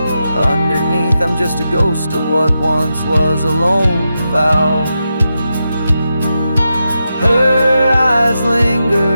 I'm just a ghost of what once was a lone fowl. Her eyes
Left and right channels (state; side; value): inverted; both; correlation -0.88